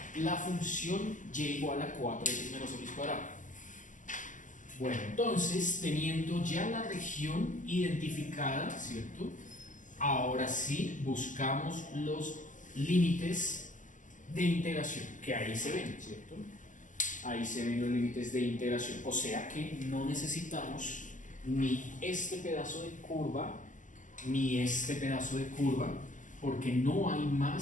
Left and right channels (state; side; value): late; right; 0.37 ms